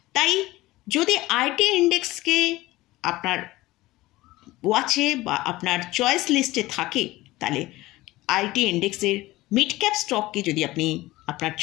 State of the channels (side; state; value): right; quieter; 18.5 dB